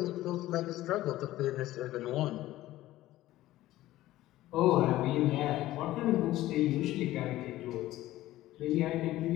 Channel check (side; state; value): right; quieter; 15.6 dB